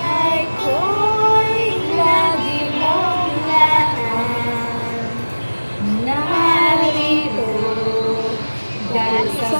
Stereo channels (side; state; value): both; inverted; correlation -1.00